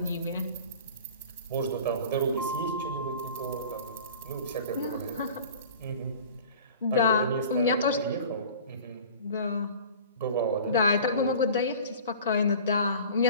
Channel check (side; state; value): both; inverted; correlation -0.42